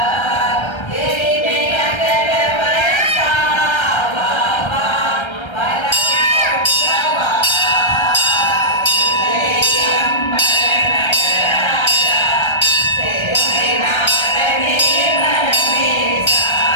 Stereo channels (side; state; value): right; late; 1.3 ms